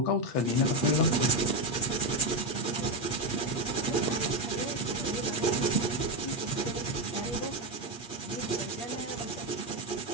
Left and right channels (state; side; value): late; right; 8.5 ms